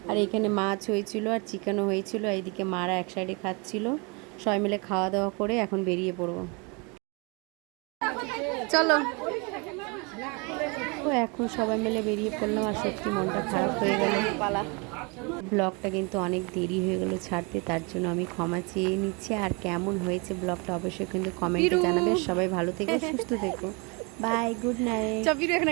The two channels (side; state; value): left; quieter; 31.0 dB